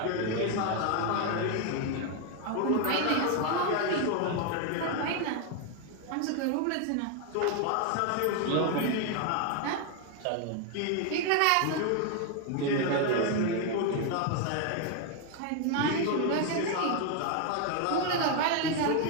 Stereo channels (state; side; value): different; both; correlation 0.01